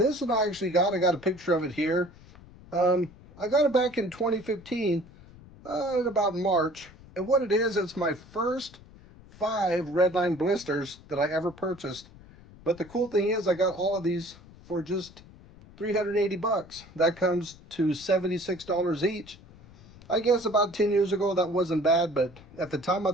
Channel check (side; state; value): left; noise; rumble, 22 dB below the sound